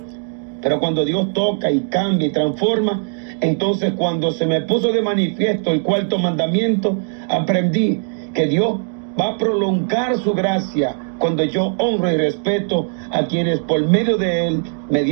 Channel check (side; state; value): left; silent; 64 dB below the other